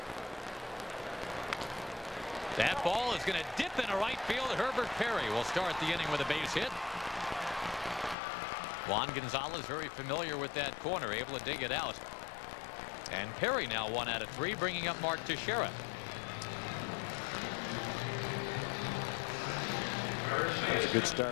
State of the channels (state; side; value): drops out; right; at 8.2 s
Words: That ball is going to dip into right field. Herbert Perry will start the inning with a base hit. Juan Gonzalez very familiar with that corner, able to dig it out. And Perry now 1 out of 3, bringing up Mark Teixeira. That's a good